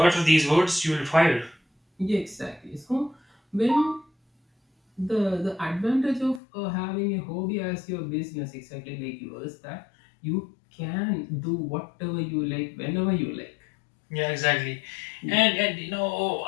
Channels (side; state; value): right; drops out; at 6.4 s